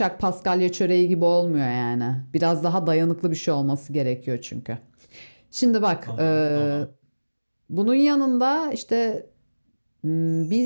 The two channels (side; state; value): both; inverted; correlation -1.00